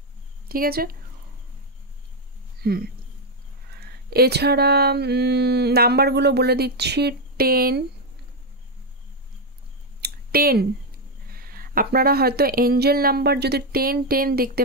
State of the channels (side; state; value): both; normal; correlation 0.04